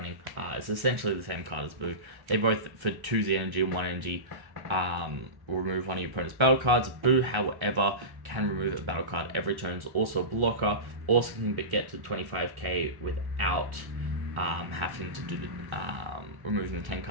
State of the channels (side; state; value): left; late; 1.1 ms